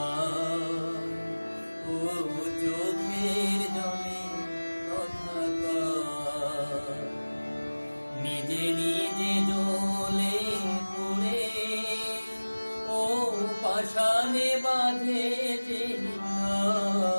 ও চোখের জলে কথা কয়, নিজে নিজে জ্বলে পুড়ে ও পাষাণে বাঁধে যে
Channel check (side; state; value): both; inverted; correlation -1.00